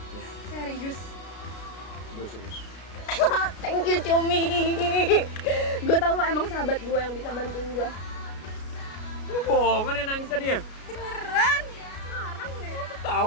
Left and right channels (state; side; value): late; right; 33 ms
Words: Iya. Serius? Gue serius. Thank you, Cumi. Gue tau lo emang sahabat gue yang bisa bantuin gue. Lo bohongan ya nangis tadi ya? Beneran? Ngarang deh.